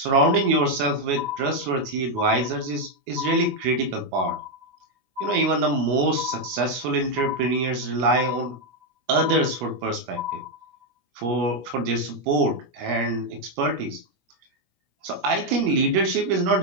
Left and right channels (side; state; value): left; late; 16 ms